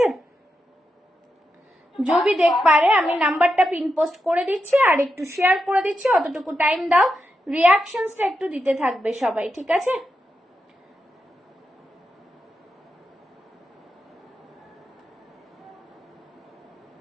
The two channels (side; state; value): both; normal; correlation 0.87